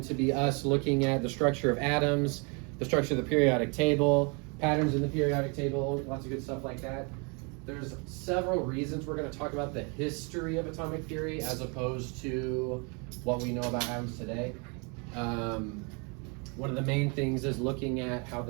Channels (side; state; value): left; quieter; 33.3 dB